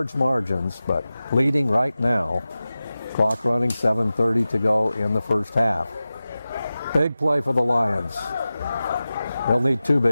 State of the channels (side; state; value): both; inverted; correlation -0.96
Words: margins, but leading right now. Clock running, 7:30 to go in the first half. Big play for the Lions. They'll need 2